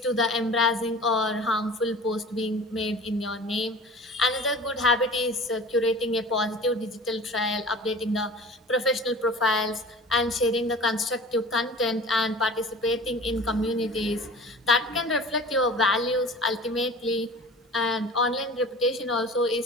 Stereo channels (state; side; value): normal; both; correlation 0.40